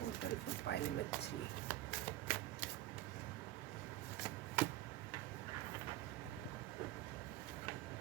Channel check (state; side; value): quieter; left; 14.9 dB